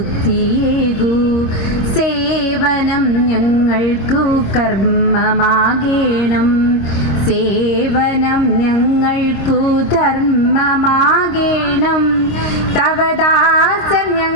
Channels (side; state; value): right; late; 26 ms